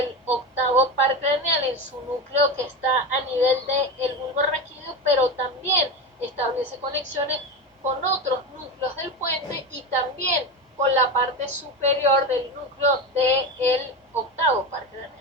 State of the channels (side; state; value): both; normal; correlation 0.20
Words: octavo par craneal en su núcleo que está a nivel del bulbo raquídeo, pero también establece conexiones con otros núcleos del puente y también con la parte superior del núcleo del octavo par craneal